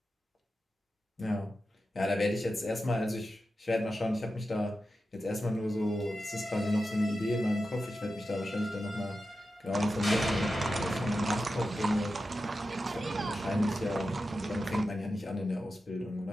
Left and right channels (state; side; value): normal; both; correlation 0.91